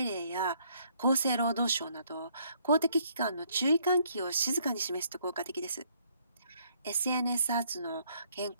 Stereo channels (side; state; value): both; inverted; correlation -0.67